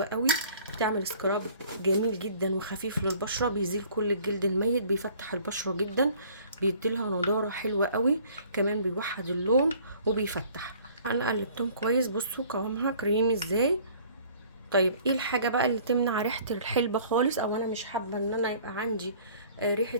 قوي، بتعمل سكراب جميل جدا وخفيف للبشره، بيزيل كل الجلد الميت، بيفتح البشره جدا، بيديلها نضاره حلوه قوي، كمان بيوحد اللون وبيفتح. انا قلبتهم كويس، بصوا قوامها كريمي ازاي. طيب ايه الحاجه بقى اللي تمنع ريحه الحلبه خالص، او انا مش حابه ان انا يبقى عندي ريحه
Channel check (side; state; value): both; inverted; correlation -0.53